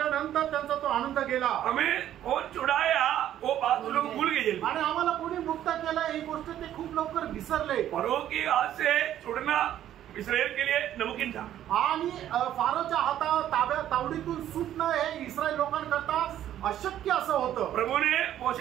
त्यांचा तो आनंद गेला. हमें कौन छुड़ाया वो बात लोग भूल गए. आणि आम्हाला कोणी मुक्त केलं ही गोष्ट ते खूप लवकर विसरले. फरो की हाथ से छुड़ना इस्राएल के लिए नामुमकिन था. आणि फारोच्या हाता तावडीतून सुटणं हे इस्रायल लोकांकरता अशक्य असं होतं. प्रभु ने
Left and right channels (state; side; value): quieter; left; 11.6 dB